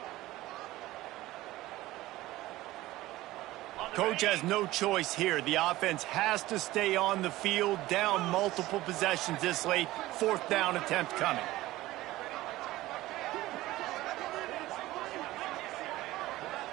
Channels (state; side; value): quieter; left; 17.2 dB